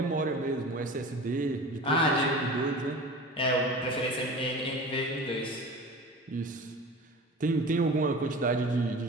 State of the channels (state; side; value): normal; both; correlation 0.36